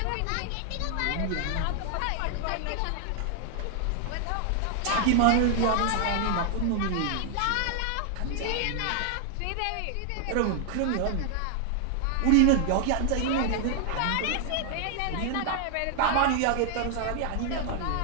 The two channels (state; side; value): different; both; correlation 0.00